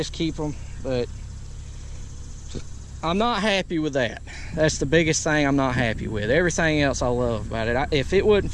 keep them, but I'm not happy with that. That's the biggest thing I'm not happy with. Everything else I love about it. If it wasn't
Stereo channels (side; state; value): both; identical; correlation 1.00